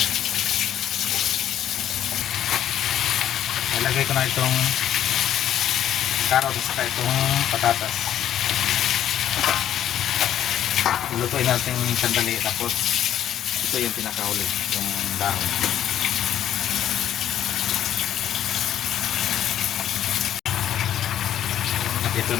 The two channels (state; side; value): quieter; right; 10.9 dB